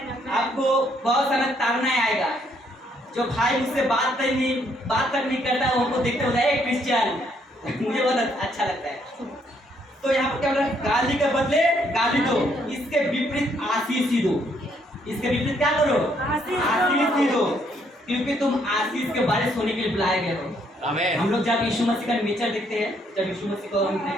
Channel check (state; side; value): normal; both; correlation 0.70